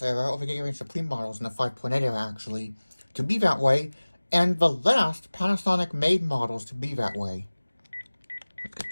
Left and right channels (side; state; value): both; inverted; correlation -1.00